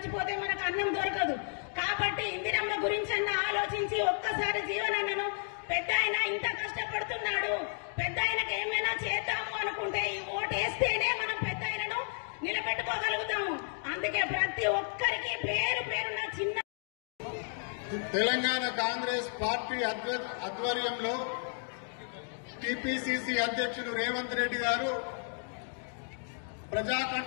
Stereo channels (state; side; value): silent; right; 56 dB below the other